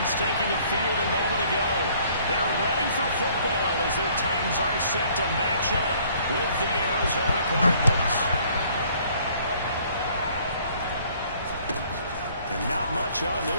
taking the field a moment ago. They're ready for football as their Titans are set to match up with the Arizona Cardinals. And not much on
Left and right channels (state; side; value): inverted; both; correlation -0.59